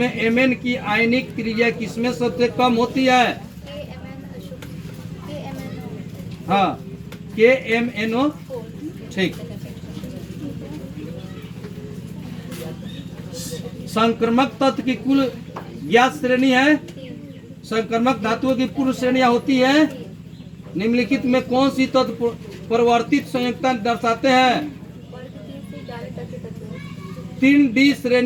एमएन की आयनिक क्रिया किसमें सबसे कम होती है? हाँ, KMNO। ठीक। संक्रमक तत्व की कुल ज्ञात श्रेणी है। संक्रमक धातुओं की पूर्व श्रेणियां होती है। निम्नलिखित में कौन सी तत्व परिवर्तित संयुक्ता दर्शाते हैं? 3D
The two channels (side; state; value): both; identical; correlation 1.00